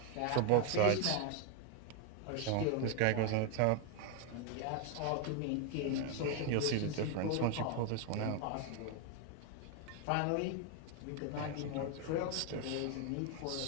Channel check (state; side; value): different; both; correlation 0.01